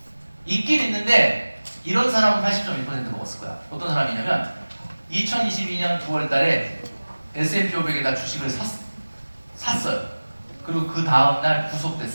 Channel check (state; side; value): inverted; both; correlation -1.00